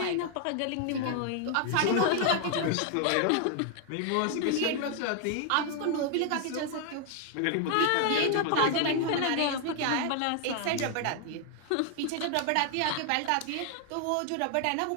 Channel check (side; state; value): both; different; correlation 0.00